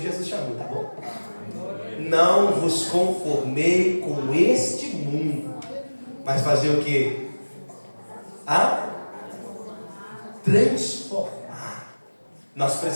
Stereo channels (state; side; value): inverted; both; correlation -1.00